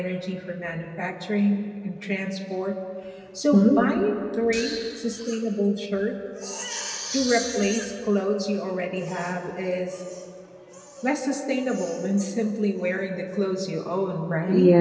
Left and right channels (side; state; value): both; identical; correlation 1.00